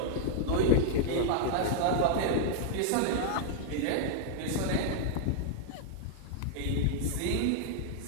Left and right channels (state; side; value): different; both; correlation 0.00